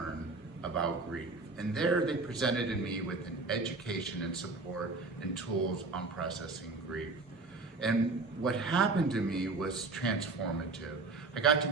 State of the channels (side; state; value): left; quieter; 3.7 dB